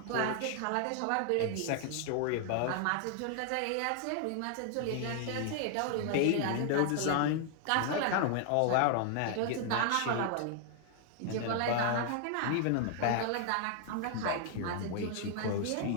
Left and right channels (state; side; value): different; both; correlation 0.00